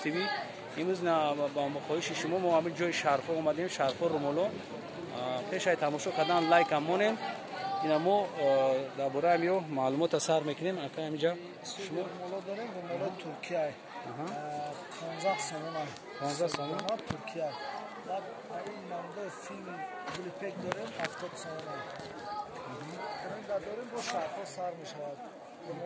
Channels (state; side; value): identical; both; correlation 1.00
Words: TV. имрӯз ба мохоҳиши шумо мо ҳамин ҷои шарфо омадем, шарфо румоло. пешай тамошо кардан лайкам монем. ина мо дар бораи ҳамиё маълумота сар мекунем. ака ҳаминҷа шумо румоло дорем, румоло Туркия 15 сомон. 15 сомон Туркия. баъд ин намудо филм клипек дорем 70 сомон. дорем бо шарфо сар мешавад.